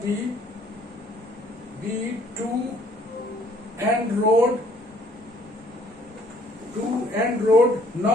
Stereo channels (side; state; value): both; normal; correlation 0.60